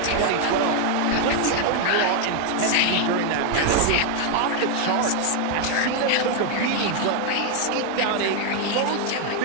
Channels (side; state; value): both; different; correlation 0.00